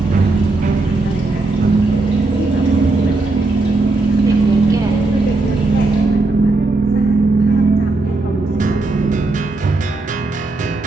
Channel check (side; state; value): left; quieter; 3.2 dB